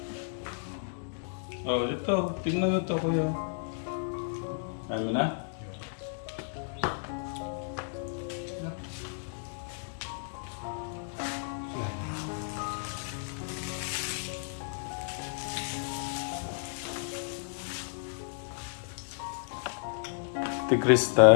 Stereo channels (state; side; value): silent; right; digital silence